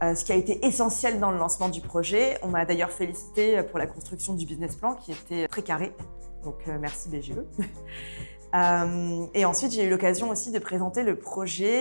ce qui a été essentiel dans le lancement du projet. On m'a d'ailleurs félicité pour la construction du business plan qui était très carré, donc merci BGE. Et ensuite, j'ai eu l'occasion aussi de présenter le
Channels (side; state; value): both; inverted; correlation -1.00